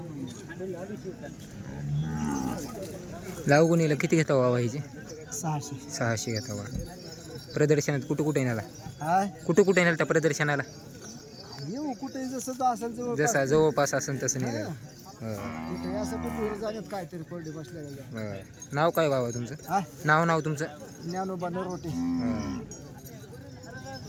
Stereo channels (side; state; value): both; identical; correlation 1.00